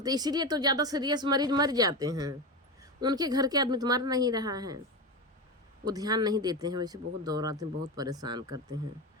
इसीलिए तो ज़्यादा सीरियस मरीज मर जाते हैं, उनके घर के आदमी तो मर नहीं रहा है, वो ध्यान नहीं देते हैं। वैसे बहुत दौड़ाते हैं, बहुत परेशान करते हैं।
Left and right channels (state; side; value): normal; both; correlation 0.19